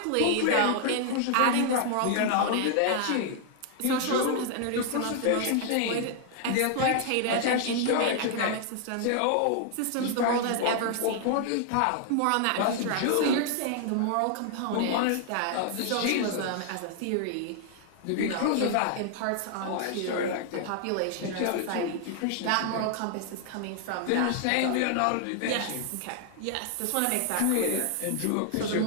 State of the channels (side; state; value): both; different; correlation 0.00